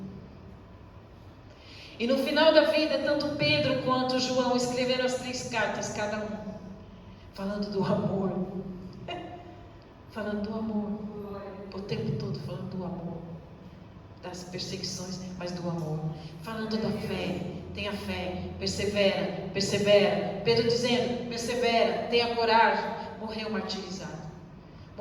E no final da vida, tanto Pedro quanto João escreveram as 3 cartas, cada um, falando do amor. Falando do amor. O tempo todo falando do amor. Das perseguições, mas do amor. Falando da fé. Tenha fé. Persevera. Persevera. Pedro dizendo: persevera. Tenha coragem. Morreu martirizado.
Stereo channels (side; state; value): both; identical; correlation 1.00